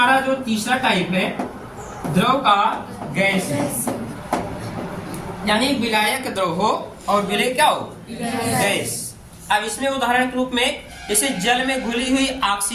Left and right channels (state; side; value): identical; both; correlation 1.00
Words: जो तीसरा टाइप है द्रव का गैस है, यानी विलायक द्रव हो और विलेय क्या हो, गैस। अब इसमें उदाहरण के रूप में जैसे जल में घुली हुई